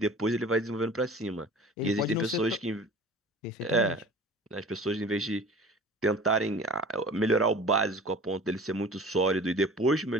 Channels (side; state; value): both; normal; correlation 0.42